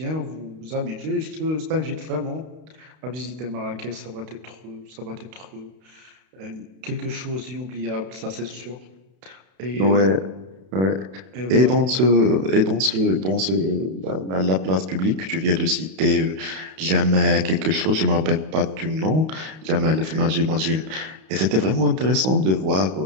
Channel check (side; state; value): left; late; 32 ms